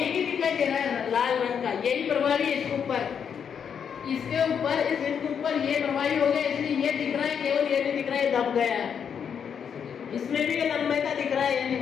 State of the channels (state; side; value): quieter; right; 7.5 dB